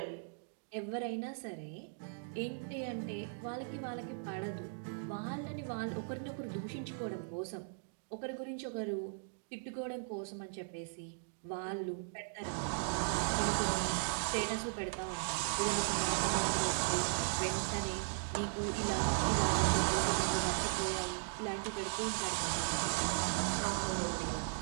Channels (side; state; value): left; silent; digital silence